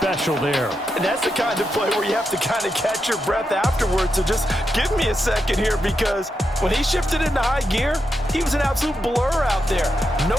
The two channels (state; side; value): normal; both; correlation 0.85